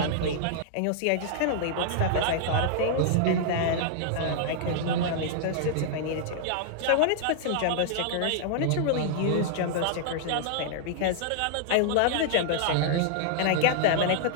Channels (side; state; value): both; different; correlation -0.01